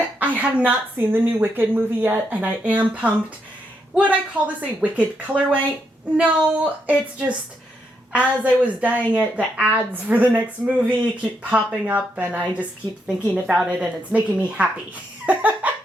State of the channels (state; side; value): normal; both; correlation 0.79